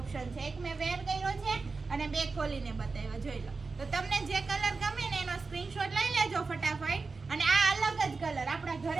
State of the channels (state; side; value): quieter; left; 4.2 dB